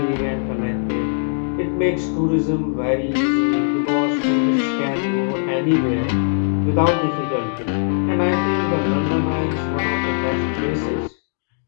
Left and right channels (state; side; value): silent; right; digital silence